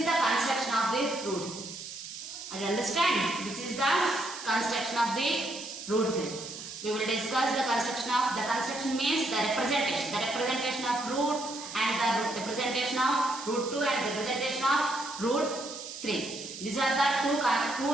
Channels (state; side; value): noise; right; hiss, 11 dB below the sound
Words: the construction of the root. Are you understand? This is the construction of the root 3. We will discuss the construction means the representation of root and the representation of root 2 and representation of root 3. These are the two